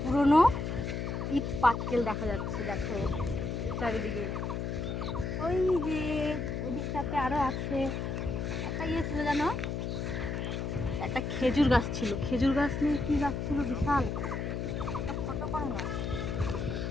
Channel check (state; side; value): noise; left; hum, 2 dB below the sound